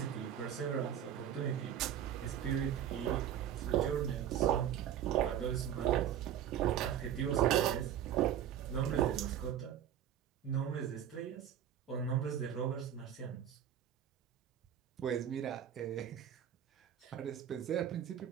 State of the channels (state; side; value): quieter; left; 9.9 dB